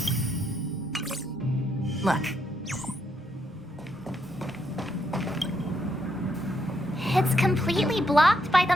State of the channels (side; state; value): both; normal; correlation 0.77